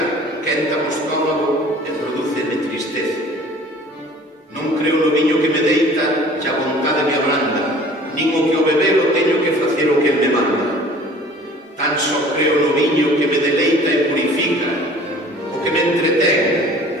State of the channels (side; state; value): both; normal; correlation 0.48